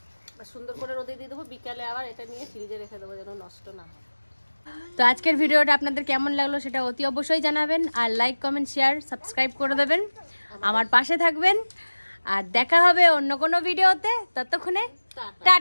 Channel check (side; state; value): both; inverted; correlation -1.00